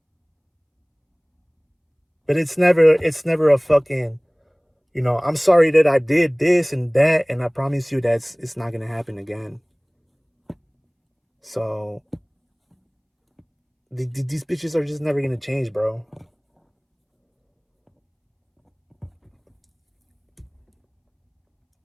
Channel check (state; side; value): identical; both; correlation 1.00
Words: But it's never a fucking, I'm sorry that I did this and that, and I promise you that's it's not gonna happen again. So these bitches are just never gonna change, bro.